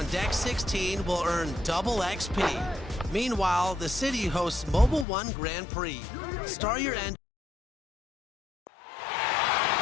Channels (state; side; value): drops out; right; at 5.1 s